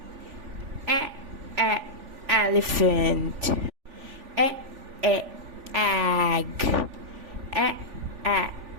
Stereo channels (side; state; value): left; late; 3.4 ms